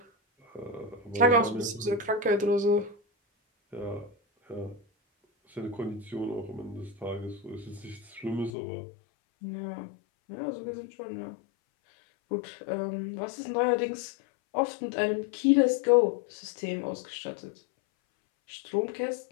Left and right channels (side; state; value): right; drops out; at 8.5 s